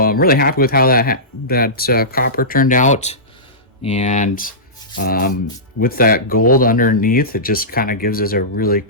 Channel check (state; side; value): normal; both; correlation -0.19